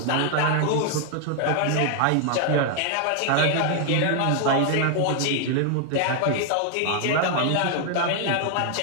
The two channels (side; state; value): both; different; correlation 0.00